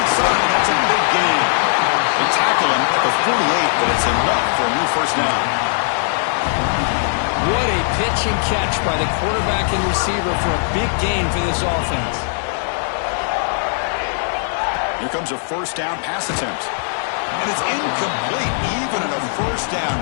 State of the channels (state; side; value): silent; right; digital silence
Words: side. That's a big gain. They tackle him at the 48, but it's enough for a new first down. What a pitch and catch by the quarterback and receiver for a big gain for this offense. Here comes a first down pass attempt. And it's incomplete. Even in a first down